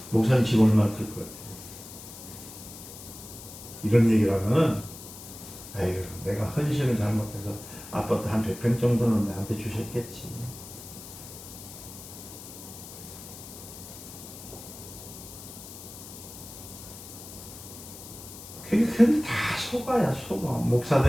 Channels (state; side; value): noise; left; hiss, 14 dB below the sound